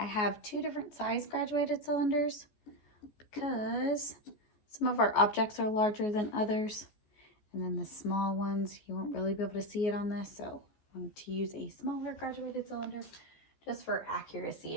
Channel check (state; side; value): late; right; 14 ms